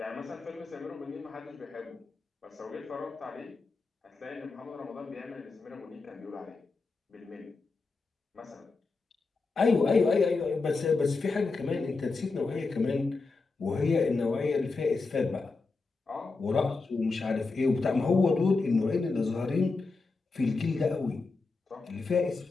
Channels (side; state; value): right; quieter; 4.0 dB